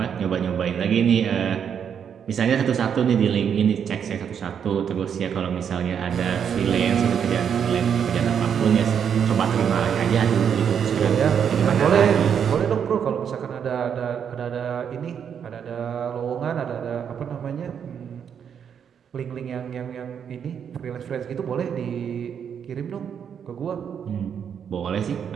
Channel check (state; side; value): quieter; left; 7.8 dB